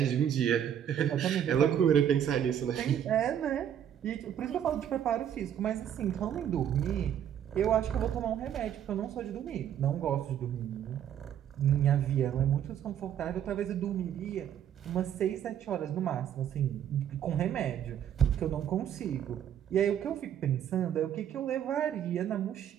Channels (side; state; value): left; quieter; 9.7 dB